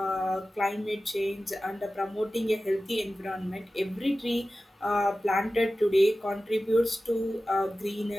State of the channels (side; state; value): both; normal; correlation 0.95